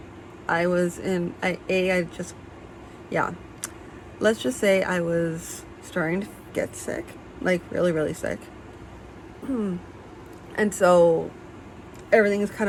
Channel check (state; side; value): identical; both; correlation 1.00